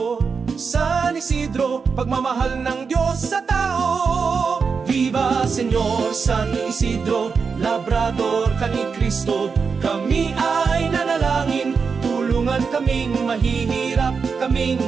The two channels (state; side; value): quieter; left; 5.4 dB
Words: San Isidro, pagmamahal ng Diyos sa tao. Viva Señor San Isidro, labrador ka ni Cristo. Kami ay nanalangin, tulungan kaming mahihirap,